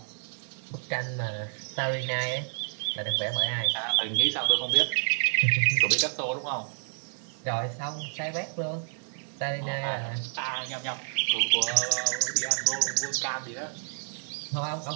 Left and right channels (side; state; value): left; silent; 59 dB below the other